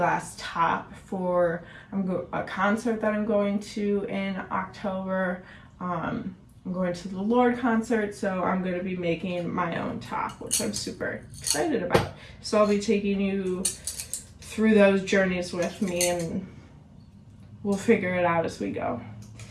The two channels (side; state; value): both; identical; correlation 1.00